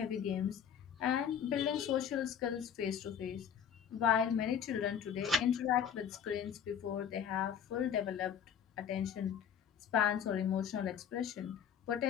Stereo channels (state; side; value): quieter; right; 8.4 dB